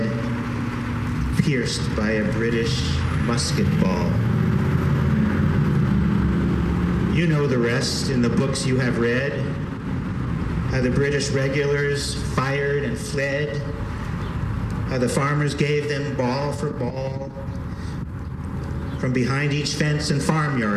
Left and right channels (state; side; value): identical; both; correlation 1.00